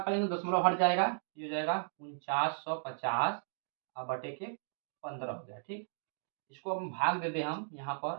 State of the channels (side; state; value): left; silent; digital silence